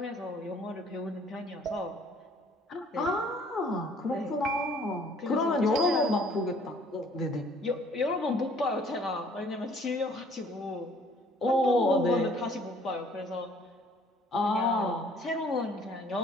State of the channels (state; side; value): normal; both; correlation 0.58